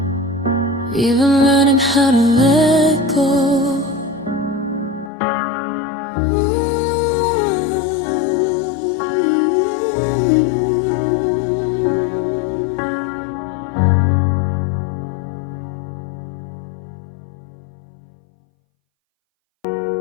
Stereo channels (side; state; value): right; drops out; at 5.1 s